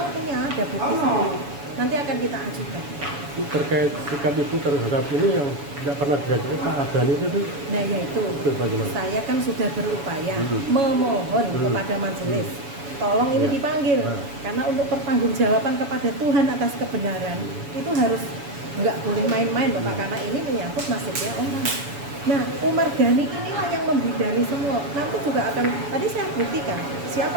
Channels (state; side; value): late; left; 7.1 ms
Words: punya ada bukti sendiri. Nanti akan kita ajukan. Terkait sikap ibu terhadap ini yang tidak pernah diajukan Pak Adani itu? Nah yaitu, bagaimana? saya kan sudah berupaya memohon kepada majelis, tolong ini dipanggil, karena untuk pertanggungjawaban kepada Tuhan atas kebenaran itu harus nggak boleh main-main Bapak, karena ini menyangkut nasibnya orang. Nah, Umar Ghani inilah yang membidani semua. Nanti juga akan, tadi saya buktikan siapa